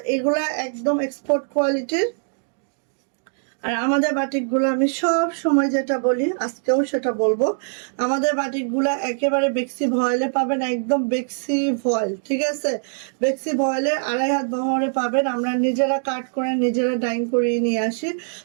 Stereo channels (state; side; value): silent; left; digital silence